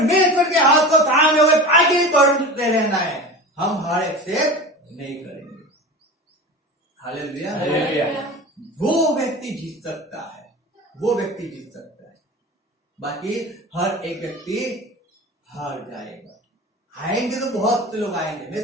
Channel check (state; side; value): normal; both; correlation 0.31